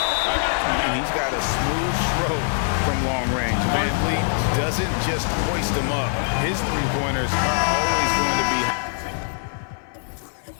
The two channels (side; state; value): right; silent; 57 dB below the other